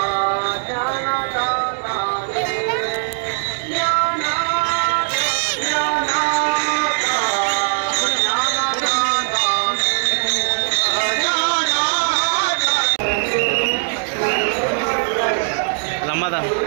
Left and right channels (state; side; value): silent; left; digital silence